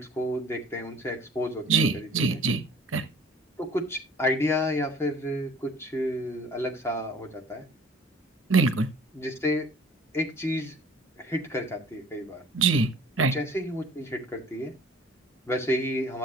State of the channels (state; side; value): normal; both; correlation 0.50